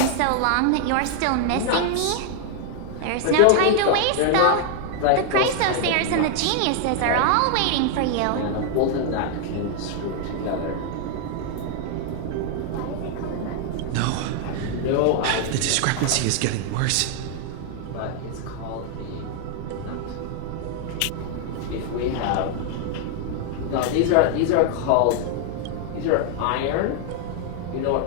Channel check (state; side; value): different; both; correlation 0.00